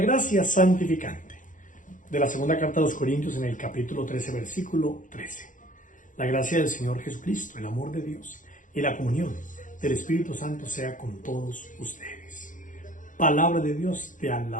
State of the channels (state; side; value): late; right; 0.38 ms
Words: santificante de la segunda carta a los Corintios en el capítulo 13, versículo 13. La gracia del Señor Jesucristo, el amor de Dios y la comunión del Espíritu Santo sea con todos ustedes. Palabra de Dios, te